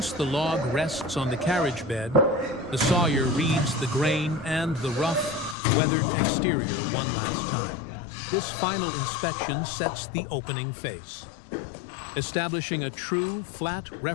the log rests on the carriage bed, the sawyer reads the grain and the rough, weathered exterior one last time. This final inspection sets the opening face. Establishing a true flat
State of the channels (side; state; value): right; drops out; at 5.6 s